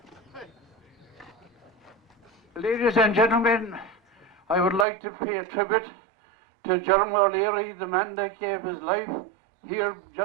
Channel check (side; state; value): left; drops out; at 4.9 s